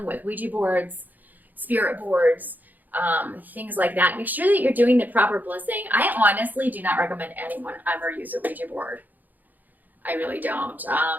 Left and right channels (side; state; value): left; late; 0.084 ms